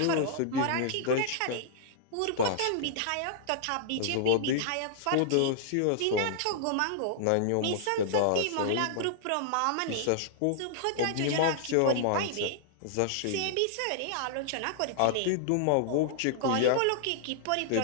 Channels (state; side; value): different; both; correlation -0.01